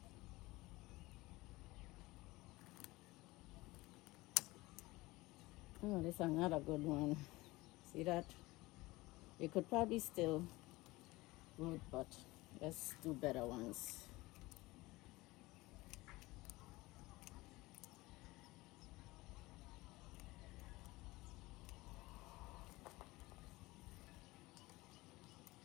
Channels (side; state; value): right; quieter; 20.7 dB